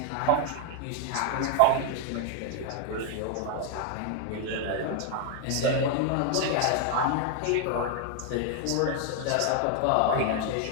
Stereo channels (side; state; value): both; different; correlation 0.00